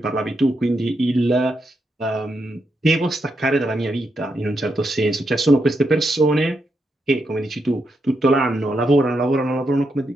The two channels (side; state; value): both; normal; correlation 0.83